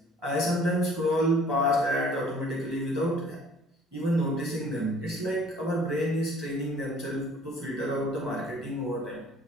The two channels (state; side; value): normal; both; correlation 0.54